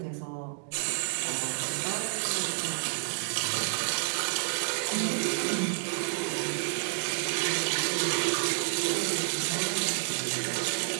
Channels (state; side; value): silent; left; digital silence